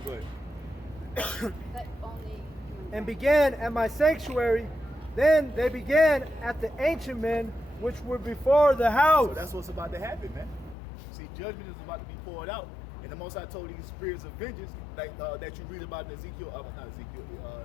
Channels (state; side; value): drops out; right; at 10.8 s